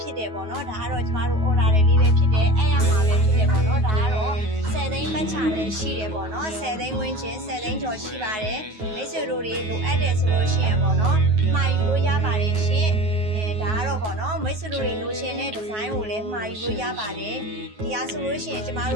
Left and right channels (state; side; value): late; left; 9.3 ms